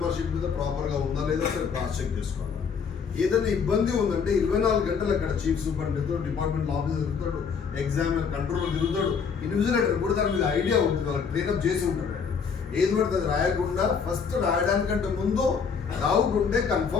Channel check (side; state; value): right; quieter; 6.2 dB